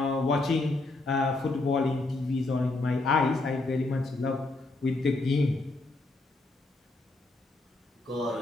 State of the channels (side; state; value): right; quieter; 3.1 dB